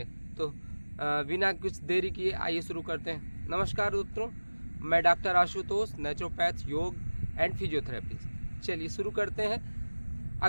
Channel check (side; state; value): both; inverted; correlation -1.00